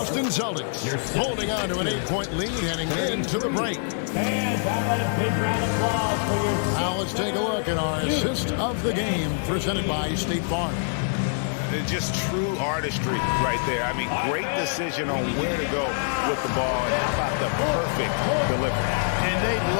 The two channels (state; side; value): silent; right; digital silence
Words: Celtics holding on to an 8-point lead heading into the break. Now let's take a look at our assist of the game presented by State Farm. Just true artistry right there. I mean, great decision on where to go with the ball. And how about the perfect delivery? And they'd